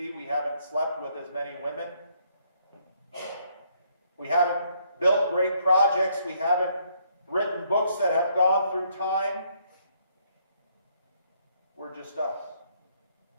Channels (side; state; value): both; inverted; correlation -0.70